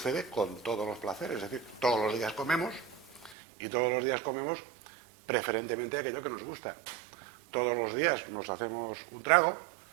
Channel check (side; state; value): left; drops out; at 3.4 s